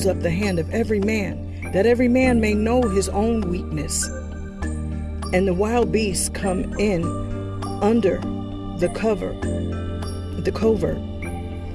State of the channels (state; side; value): identical; both; correlation 1.00